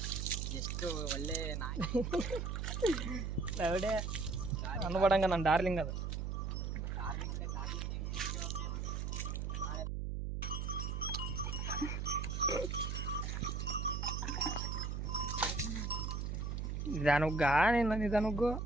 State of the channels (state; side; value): noise; right; hum, 2 dB below the sound